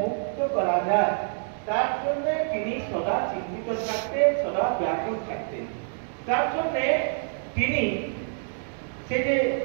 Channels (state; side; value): silent; left; digital silence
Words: মুক্ত করা যায়, তার জন্য তিনি সদা চিন্তিত থাকতেন, সদা ব্যাকুল থাকতেন। তার জন্য তিনি সে যে